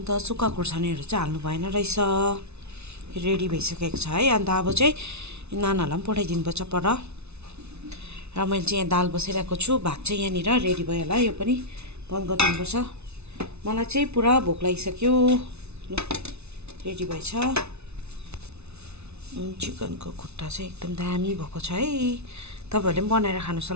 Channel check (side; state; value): left; late; 0.81 ms